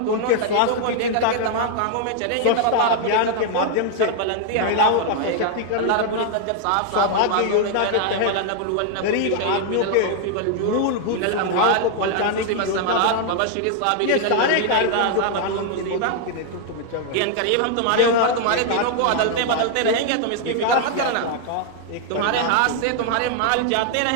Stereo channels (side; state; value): both; different; correlation 0.00